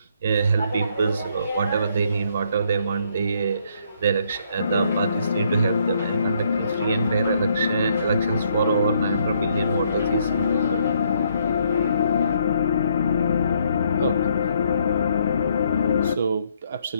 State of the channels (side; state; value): both; inverted; correlation -0.70